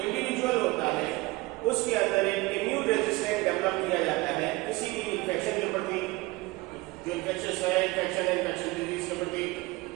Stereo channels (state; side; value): quieter; left; 21.7 dB